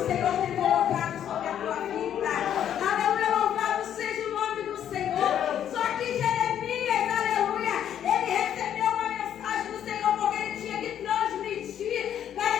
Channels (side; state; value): right; quieter; 10.0 dB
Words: tem colocado sobre a tua vida. Aleluia, louvado seja o nome do Senhor. Só que Jeremias, aleluia, ele recebeu uma mensagem do Senhor, porque ele tinha que transmitir para